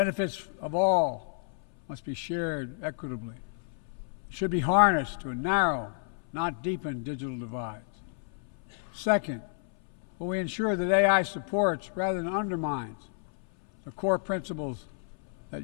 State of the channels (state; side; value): silent; right; 58 dB below the other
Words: of all must be shared equitably. It should be harnessed to narrow, not deepen digital divides. Second, will we ensure that AI supports rather than undermines the core principles that